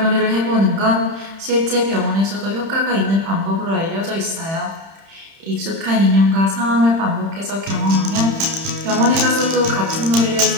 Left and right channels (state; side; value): late; left; 31 ms